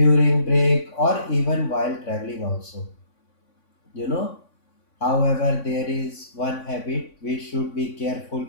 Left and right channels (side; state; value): right; late; 3.6 ms